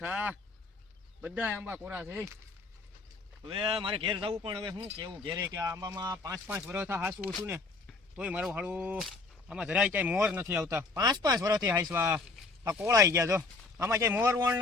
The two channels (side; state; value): right; quieter; 3.8 dB